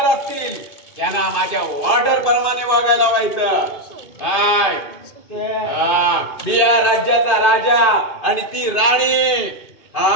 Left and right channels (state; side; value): late; right; 2.5 ms